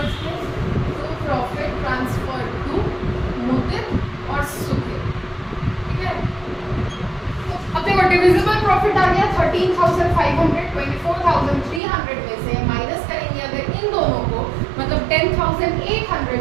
में टू प्रॉफिट ट्रांसफर टू मुदित और सुखित, ठीक है। तो अब देखो डिविजिबल प्रॉफिट आ गया 13,500, 24,300 में से माइनस करेंगे अगर इन दोनों को, मतलब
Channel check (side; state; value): left; drops out; at 11.8 s